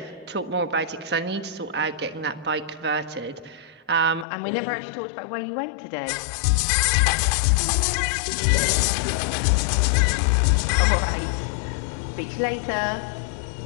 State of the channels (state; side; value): drops out; right; at 4.2 s